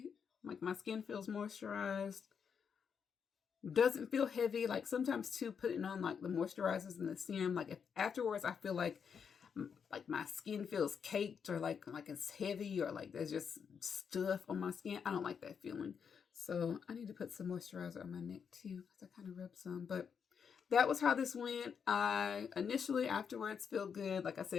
like my skin feels moisturized. Doesn't feel heavy. Like sometimes too, putting on like the moisturizers and the serum, like if afterwards I feel like my skin feels caked or like it's heavy or like there's just stuff on my skin. I don't like that feeling. So I need to put some moisturizer on my neck too because I kind of rubbed some, but that was how this went. I initially afterwards feel good. Like I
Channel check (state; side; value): quieter; right; 6.8 dB